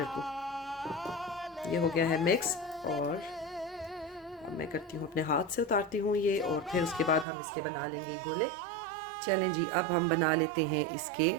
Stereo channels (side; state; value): left; drops out; at 7.2 s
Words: को। ये हो गया है मिक्स, और अब मैं करती हूँ अपने हाथ से उतारती हूँ ये, और फिर उसके बाद हम इसके बना लेंगे गोले। चलें जी, अब हम बना लेते हैं इसके